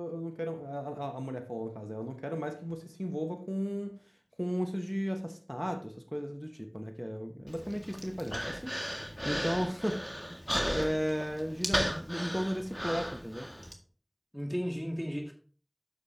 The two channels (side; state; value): both; identical; correlation 1.00